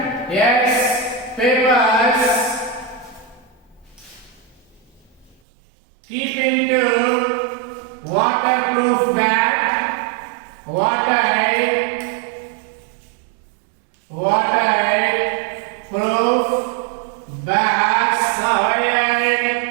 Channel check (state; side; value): drops out; left; at 5.4 s